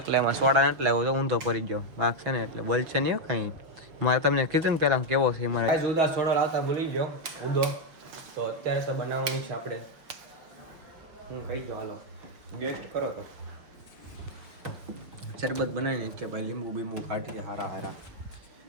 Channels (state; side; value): late; left; 6.0 ms